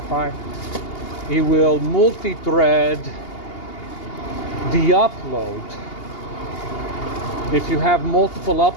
it will multi-thread the upload. If you have multiple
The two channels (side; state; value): right; late; 2.8 ms